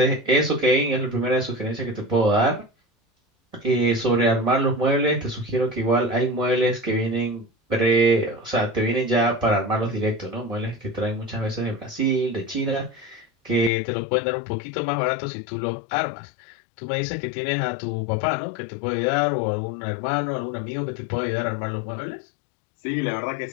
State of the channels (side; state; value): right; drops out; at 13.7 s